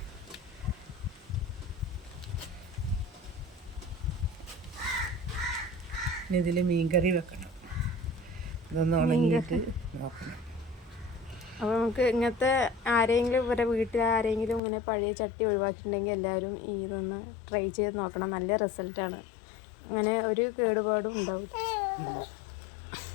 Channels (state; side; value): drops out; right; at 14.6 s